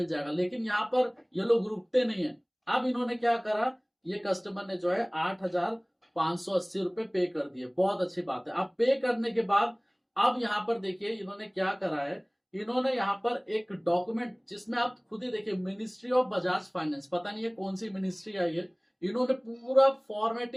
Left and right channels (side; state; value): both; identical; correlation 1.00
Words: जाएगा। लेकिन यहाँ पर ये लोग रुकते नहीं है। अब इन्होंने क्या करा, ये कस्टमर ने जो है 8,580 रुपए पे कर दिए। बहुत अच्छी बात है। अब पे करने के बाद अब यहाँ पर देखिए इन्होंने क्या करा है, इन्होंने यहाँ पर एक डॉक्यूमेंट, जिसमें आप खुद ही देखिए, मिनिस्ट्री ऑफ बजाज फाइनेंस, पता नहीं है कौन सी मिनिस्ट्री आई है, इन्होंने पूरा